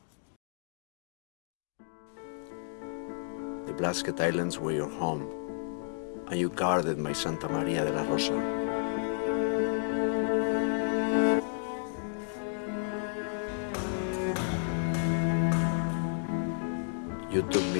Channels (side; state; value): right; silent; digital silence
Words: The Blasket Islands were your home, and you guarded my Santa Maria de la Rosa. You took